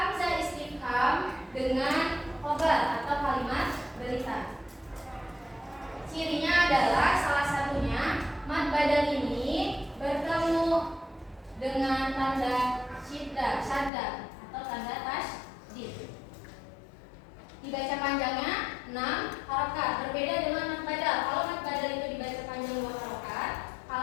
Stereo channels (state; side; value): drops out; right; at 13.9 s